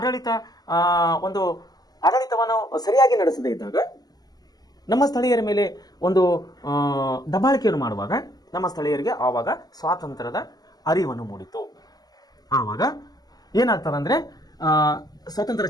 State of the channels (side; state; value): right; late; 0.19 ms